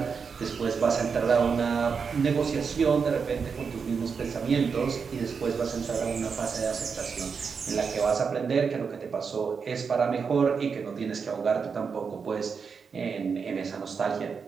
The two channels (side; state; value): left; quieter; 5.8 dB